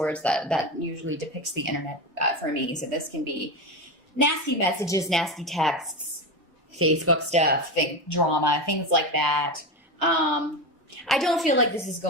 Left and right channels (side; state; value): both; normal; correlation 0.19